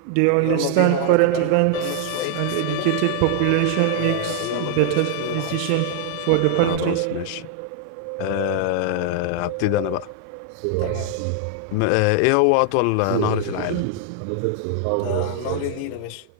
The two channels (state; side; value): different; both; correlation 0.00